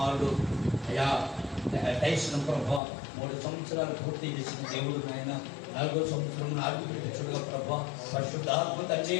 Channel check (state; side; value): drops out; right; at 2.8 s